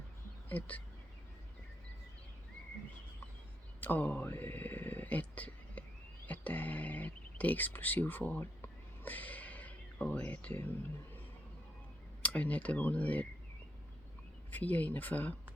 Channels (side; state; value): both; normal; correlation 0.78